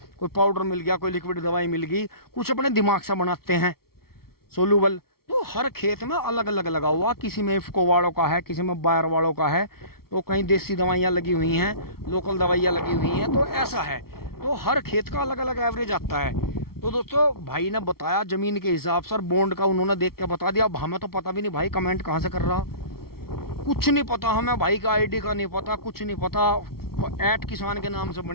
कोई पाउडर मिल गया, कोई लिक्विड दवाई मिल गई, कुछ अपने दिमाग से बनाते हैं सोलूबल। तो हर खेत में अलग अलग लगा हुआ, किसी में इफ्को वालों का है, किसी में बायर वालों का है, तो कहीं देसी दवाइयाँ लगी हुई हैं, लोकल दवाइयाँ लगी हुई हैं। तो ऐसा है, तो हर खेत का अलग अलग एवरेज आता है। तो दोस्तों भाई ने बताया जमीन के हिसाब से, बॉन्ड का उन्होंने देख के बता दिया। अब हमें तो पता भी नहीं भाई कमेंट कहाँ से कर रहा, कुछ नहीं पता हमें, भाई का आईडी का नहीं पता, कुछ नहीं पता। @किसान के नाम से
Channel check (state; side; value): late; right; 0.94 ms